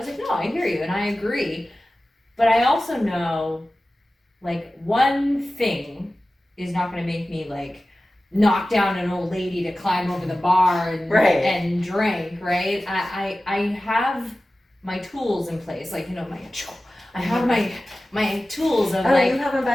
like, no, I hear you and I agree. But I also know like one thing is not going to make me like knock down an old lady to climb over the bar and and drink, right? I have my tools in place, like I have my tools of like. Oh, you have them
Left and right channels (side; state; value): both; normal; correlation 0.96